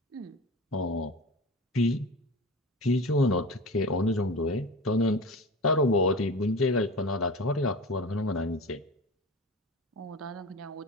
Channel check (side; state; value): both; normal; correlation 0.32